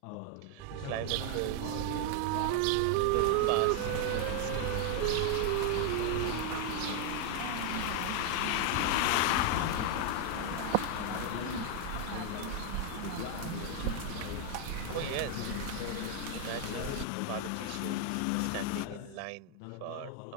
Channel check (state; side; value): different; both; correlation 0.00